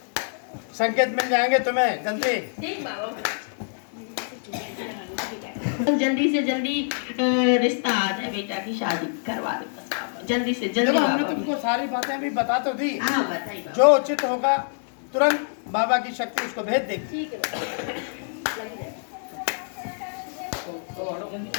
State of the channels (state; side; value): silent; right; digital silence